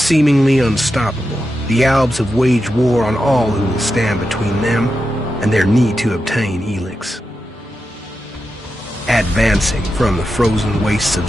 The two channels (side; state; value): both; normal; correlation 0.89